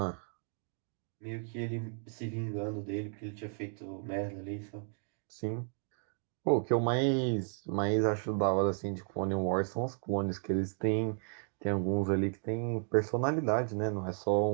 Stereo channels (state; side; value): silent; left; 55 dB below the other